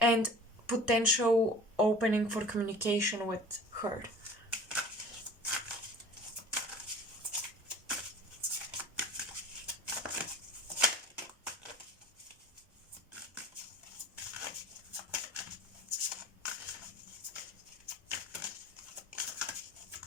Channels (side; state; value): both; normal; correlation 0.43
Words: potential opening for communication with her.